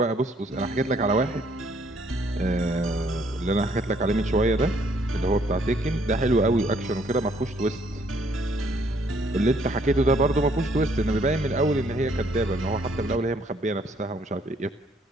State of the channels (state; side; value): normal; both; correlation 0.66